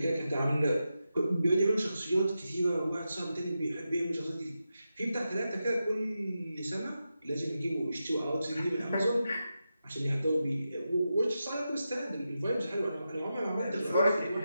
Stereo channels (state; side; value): inverted; both; correlation -0.89